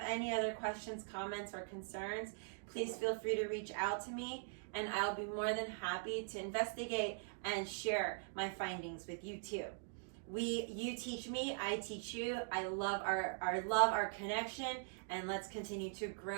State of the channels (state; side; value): silent; left; digital silence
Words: any other questions, comments, or concerns, please feel free to reach out to me, and I'll be more than happy to investigate and share my findings with you too. You teach me, I teach you. I love our connection, and let's continue to